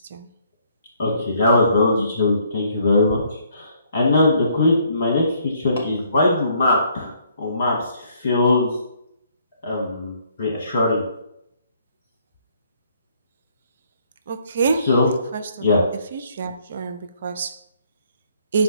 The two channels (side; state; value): both; inverted; correlation -0.66